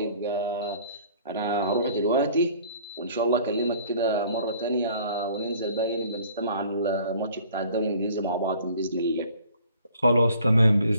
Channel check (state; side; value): inverted; both; correlation -0.54